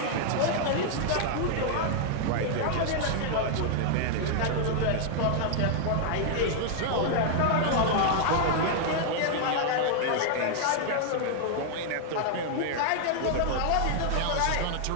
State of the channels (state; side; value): different; both; correlation -0.01